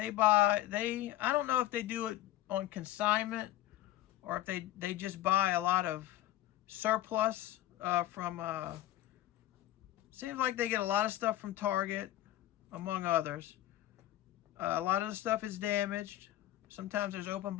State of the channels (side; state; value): right; quieter; 14.3 dB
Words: don't know if they do it on consignment or if they just buy a lot of surplus from, seems like they get a lot of stuff from Target, among others. A lot of the stuff is damaged. Sometimes there's open